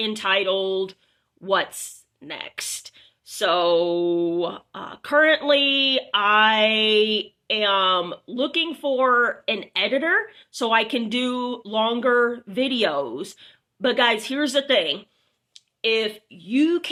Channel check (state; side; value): identical; both; correlation 1.00